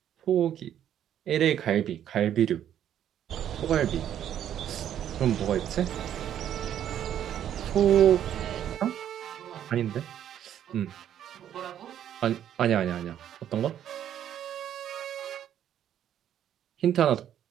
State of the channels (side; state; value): left; quieter; 10.4 dB